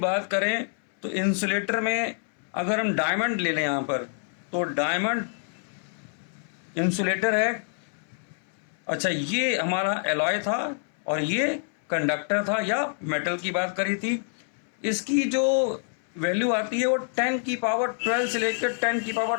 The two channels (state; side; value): silent; right; 58 dB below the other